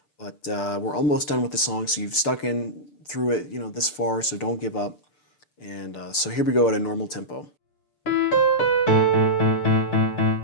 but we're almost done with the song. So you've stuck in through it, this far. So don't give up. And so here we go at a normal tempo.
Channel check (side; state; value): right; late; 6.8 ms